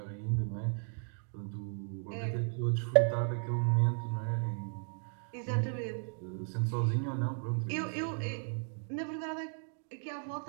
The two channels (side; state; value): left; silent; 54 dB below the other